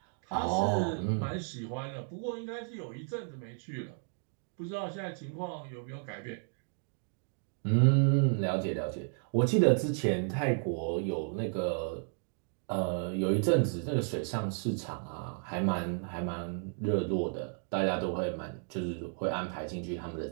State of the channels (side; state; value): left; silent; 56 dB below the other